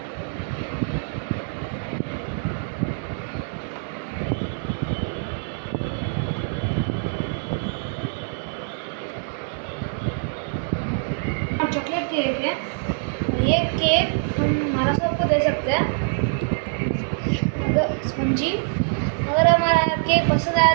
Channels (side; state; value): left; silent; 57 dB below the other